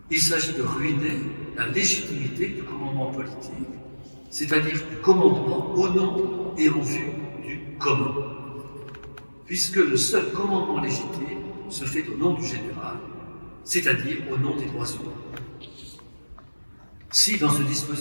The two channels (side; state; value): both; inverted; correlation -1.00